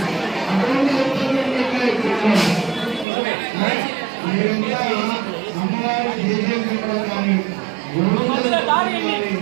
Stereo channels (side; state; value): left; drops out; at 3.1 s